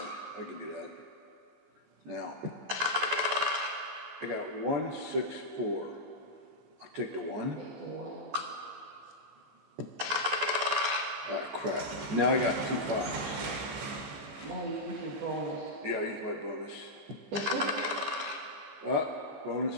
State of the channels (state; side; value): late; left; 14 ms